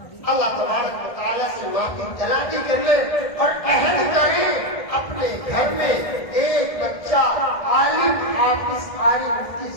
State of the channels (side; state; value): right; late; 1.5 ms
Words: اللہ تبارک و تعالیٰ سے معافی طلبی کر لیں اور عہد کریں اپنے گھر میں ایک بچہ عالم حافظ قاری مفتی